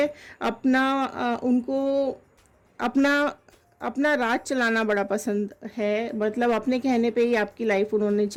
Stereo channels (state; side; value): identical; both; correlation 1.00